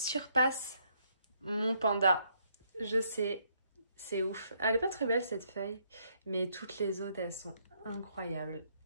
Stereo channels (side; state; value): both; inverted; correlation -0.72